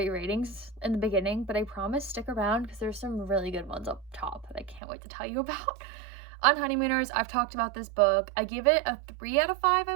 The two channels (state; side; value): drops out; left; at 4.8 s